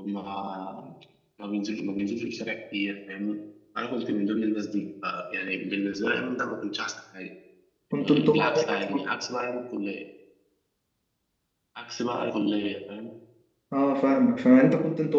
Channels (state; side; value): identical; both; correlation 1.00